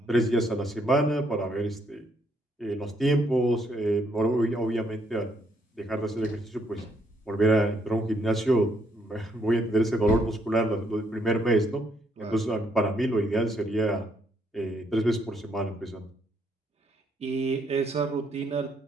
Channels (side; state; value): both; normal; correlation 0.72